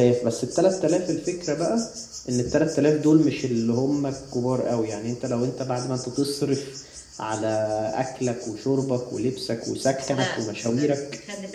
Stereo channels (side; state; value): both; identical; correlation 1.00